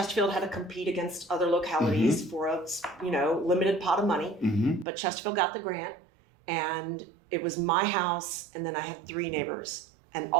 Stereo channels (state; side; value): drops out; left; at 4.9 s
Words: had to compete against other localities for a limited pot of money. Mm-hmm. But Chesterfield got the grant, and it was my house, and then I had 3 neighbors. And